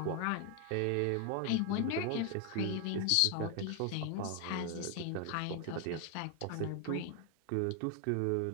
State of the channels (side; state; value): both; different; correlation 0.00